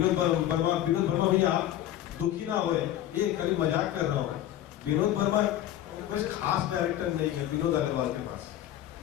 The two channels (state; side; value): quieter; right; 12.4 dB